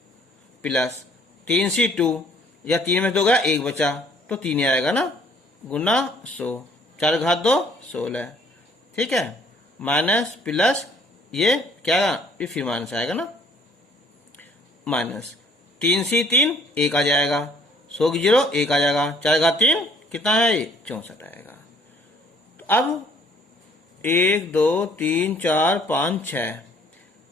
प्लस 3C2 या 3 में 2 गया 1 बचा तो 3 ही आएगा ना, गुना 100, 4 घात 2 16, ठीक है, माइनस प्लस ये क्या आएगा, ये फिर माइनस आएगा ना, माइनस 3C3 1 आ जाएगा, 100 की 0 1 आ जाएगा, 4 घात 3 कितना है, 64 आएगा। तो अब 1 2 3 4 5 6,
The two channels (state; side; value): normal; both; correlation 0.59